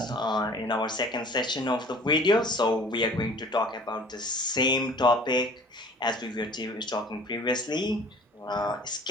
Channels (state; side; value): normal; both; correlation 0.48